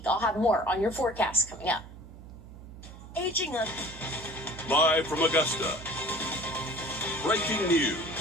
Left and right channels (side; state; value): right; noise; hum, 16 dB below the sound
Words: I'll have more on your forecast coming up. Aging up. Live from Augusta. Breaking news.